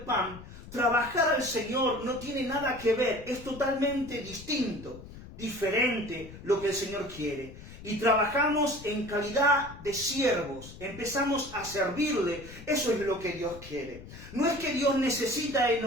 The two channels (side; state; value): left; noise; rumble, 16 dB below the sound